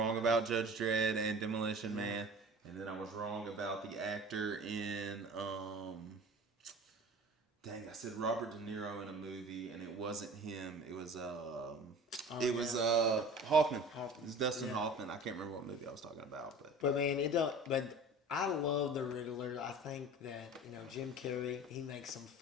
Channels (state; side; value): normal; both; correlation 0.40